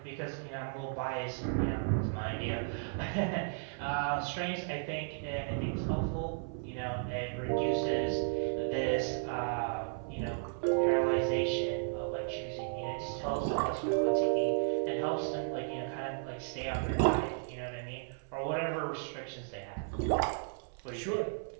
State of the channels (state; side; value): silent; left; 55 dB below the other